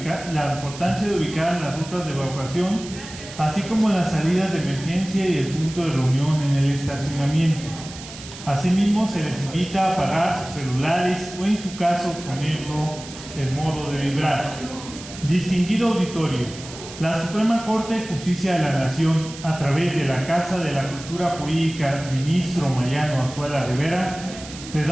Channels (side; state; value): right; noise; hiss, 14 dB below the sound